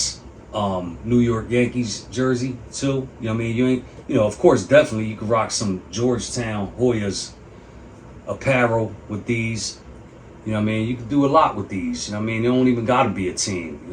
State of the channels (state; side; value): identical; both; correlation 1.00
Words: New York Yankees jersey too. You know what I mean? Of course, definitely you could rock some Georgetown Hoyas apparel with these. You know what I mean? You can do a lot with these. You know what I mean? They don't even gotta be a team. You